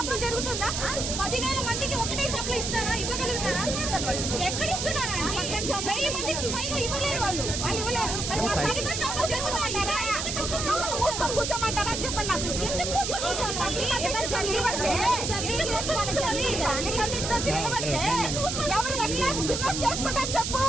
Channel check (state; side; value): noise; right; hiss, 3 dB below the sound